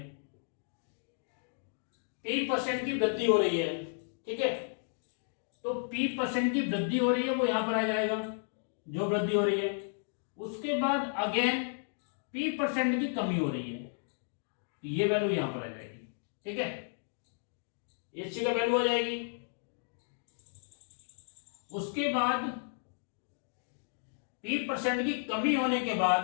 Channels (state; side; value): silent; right; digital silence